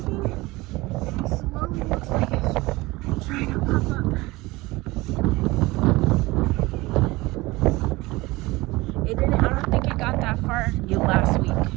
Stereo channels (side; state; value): left; quieter; 21.1 dB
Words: and it slowly looks like it's trying to pop up. It didn't. I don't think it got that far